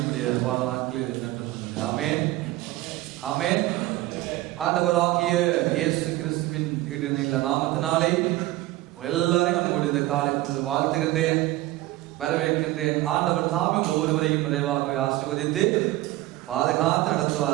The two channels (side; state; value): left; quieter; 17.2 dB